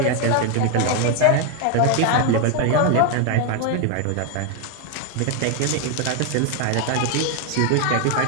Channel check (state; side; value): different; both; correlation 0.01